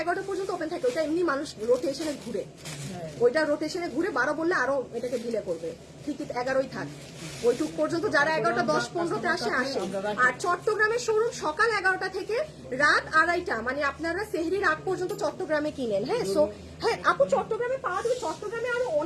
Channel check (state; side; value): identical; both; correlation 1.00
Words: 11টা পর্যন্ত ওপেন থাকে। ওইটা এমনি মানুষ রোটেশনে ঘুরে, ওইটা রোটেশনে ঘুরে 12 বললে আরো এটাকে ডিলে করবে। ঠিকই 11ই থাক, ওইটুক পর্যন্ত যারা 11টা 10-15তে আসে। আর চট্টগ্রামের শোরুম সকাল 11টা থেকে রাত 2:30, মানে আপনারা সেহরির আগ পর্যন্ত চট্টগ্রামে কিনেন। হ্যাঁ, সো হ্যাঁ আপু চট্টগ্রামে পাওয়া যাবে, চট্টগ্রামে আরো